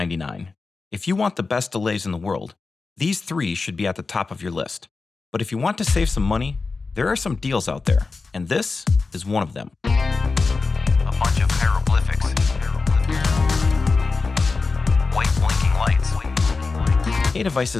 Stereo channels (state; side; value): quieter; right; 4.1 dB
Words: If you want the best delays in the world, these three should be at the top of your list. But if you want to save some money, there are some deals out there, and this is one of them. A bunch of hieroglyphics. White blinking lights. Ttap